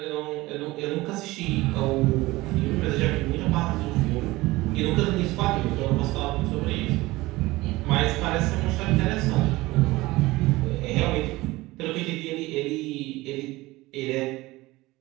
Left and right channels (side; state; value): left; quieter; 19.8 dB